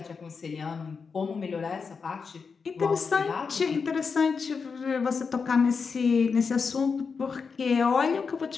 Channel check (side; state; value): right; quieter; 5.3 dB